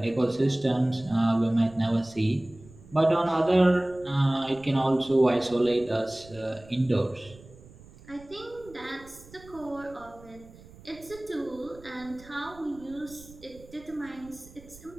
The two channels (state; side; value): noise; right; rumble, 21 dB below the sound